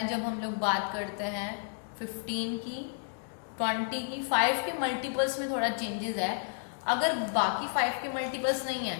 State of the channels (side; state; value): right; silent; digital silence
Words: जब हम लोग बात करते हैं 15 की, 20 की। 5 के मल्टीपल्स में थोड़ा चेंजेस है। अगर बाकी 5 के मल्टीपल्स नहीं है,